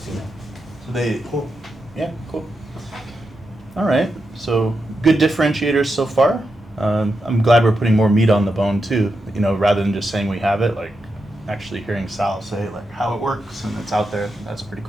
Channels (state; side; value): normal; both; correlation 0.87